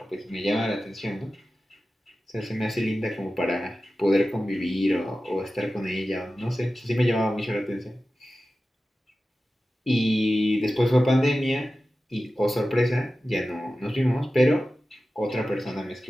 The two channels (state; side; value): normal; both; correlation 0.94